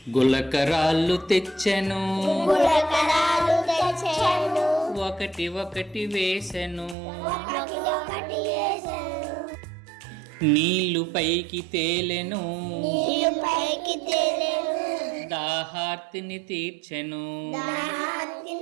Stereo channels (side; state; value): left; drops out; at 7.0 s